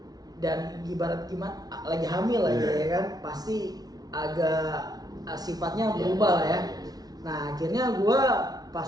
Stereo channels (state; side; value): late; left; 0.19 ms